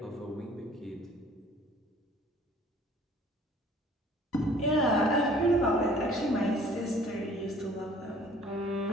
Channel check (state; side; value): normal; both; correlation 0.54